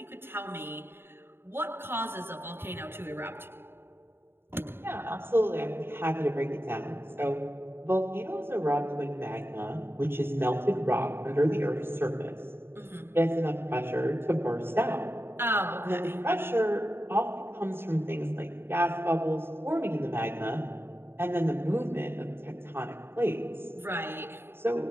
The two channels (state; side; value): late; left; 0.11 ms